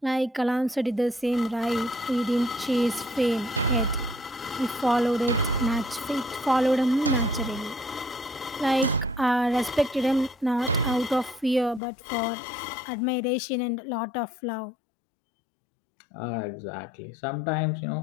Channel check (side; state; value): right; drops out; at 11.8 s